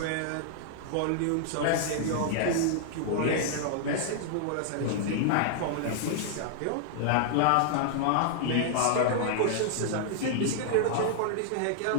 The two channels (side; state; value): both; different; correlation -0.01